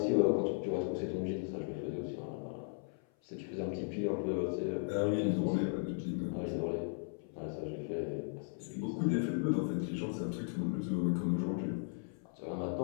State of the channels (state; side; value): silent; right; 53 dB below the other